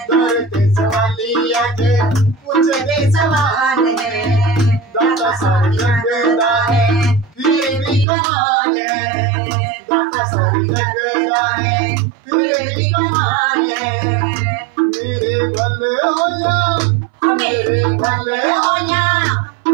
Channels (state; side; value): drops out; left; at 8.1 s